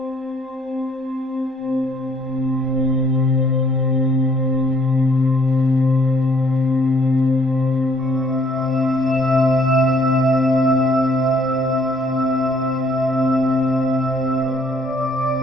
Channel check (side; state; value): both; normal; correlation 0.63